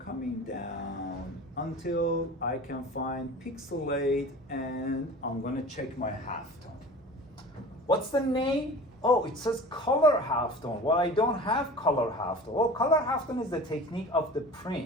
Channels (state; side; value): normal; both; correlation 0.39